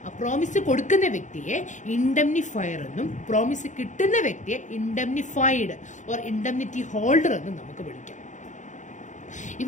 ആ promise കൊടുക്കുന്ന വ്യക്തിയെ ഇൻഡംനിഫയർ എന്നും promise കിട്ടുന്ന വ്യക്തിയെ ഇൻഡംനിഫൈഡ് or indemnity holder എന്നും നമുക്ക് വിളിക്കാം.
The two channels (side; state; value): right; late; 0.36 ms